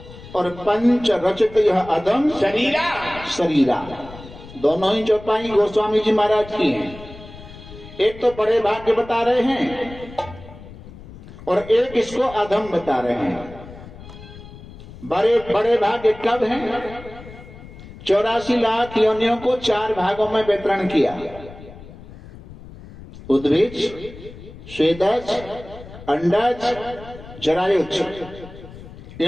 और पंच रचित यह अदम शरीरा शरीरा दोनों ही चौपाई गोस्वामी जी महाराज की हैं। एक तो बड़े भाग्य बता रहे हैं और एक इसको अधम बता रहे हैं। बड़े भाग्य कब हैं? 84 लाख योनियों को 4 भागों में वितरण किया। उद्भिज, स्वेदज, अंडज, जरायुज।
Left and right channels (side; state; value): left; noise; rumble, 17 dB below the sound